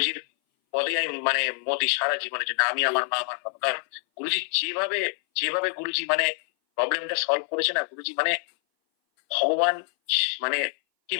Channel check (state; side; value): silent; right; 58 dB below the other